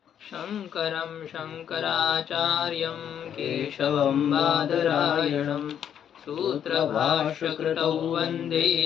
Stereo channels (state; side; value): quieter; right; 9.1 dB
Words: शङ्करं शङ्कराचार्यं केशवं बादरायणं सूत्रभाष्यकृतौ वन्दे